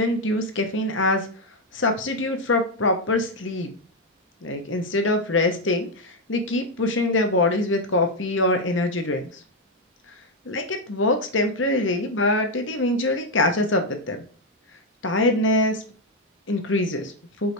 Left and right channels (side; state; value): both; normal; correlation 0.05